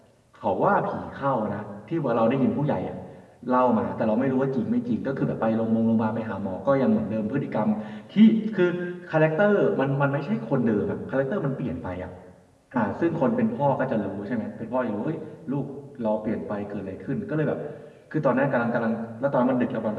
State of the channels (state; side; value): identical; both; correlation 1.00